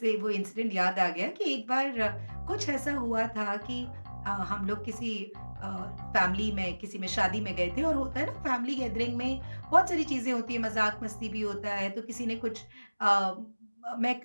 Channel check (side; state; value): both; inverted; correlation -1.00